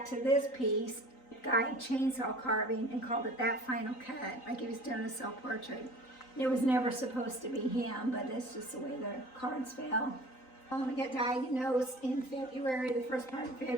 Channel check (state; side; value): late; right; 3.9 ms